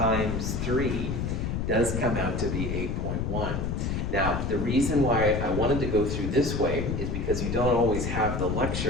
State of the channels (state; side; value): noise; left; rumble, 1 dB below the sound